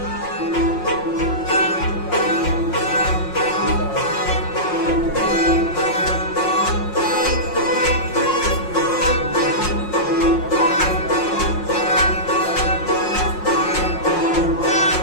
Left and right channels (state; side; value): late; right; 5.6 ms